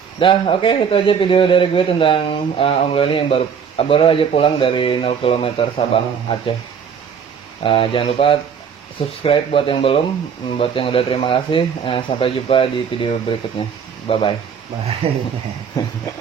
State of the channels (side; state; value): left; quieter; 7.1 dB